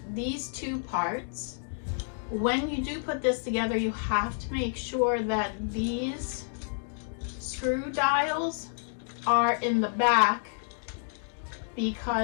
these two parts. When you do put this together, you have to make sure that these screw dials are in the back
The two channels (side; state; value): right; silent; digital silence